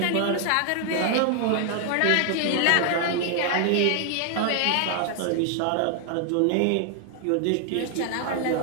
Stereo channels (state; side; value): different; both; correlation 0.00